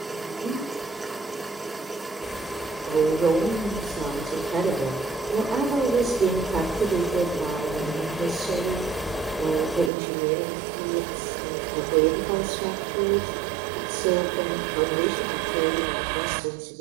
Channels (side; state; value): left; drops out; at 9.9 s